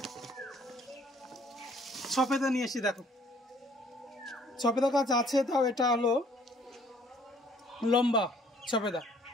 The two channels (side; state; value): both; normal; correlation 0.60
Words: সফেদা নিয়ে এসেছি, দেখো সফেদা গাছ আছে, তাও এটা হলো লম্বা সফেদা,